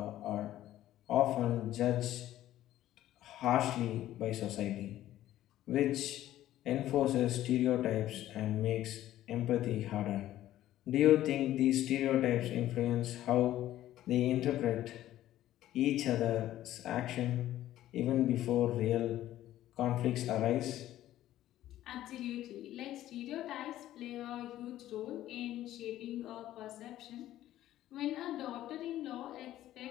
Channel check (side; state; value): right; quieter; 13.6 dB